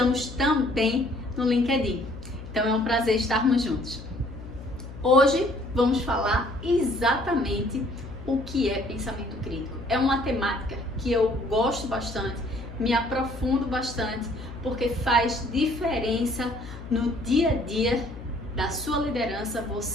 também no LinkedIn. Então é um prazer estarmos juntos. Hoje vamos falar exatamente o que é pensamento crítico. É uma temática que eu gosto bastante, me aprofundo bastante, porque faz diferença no dia a dia da sua liderança,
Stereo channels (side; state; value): left; noise; hum, 13 dB below the sound